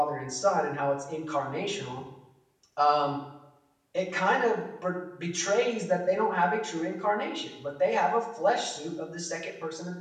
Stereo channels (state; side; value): identical; both; correlation 1.00